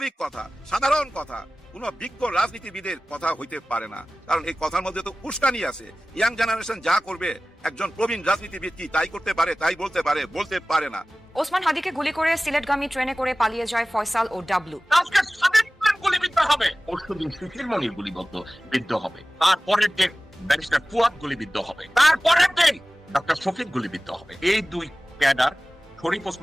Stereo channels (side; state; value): both; normal; correlation 0.97